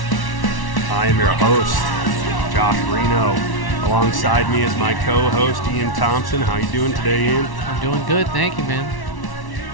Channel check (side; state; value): right; late; 1.1 ms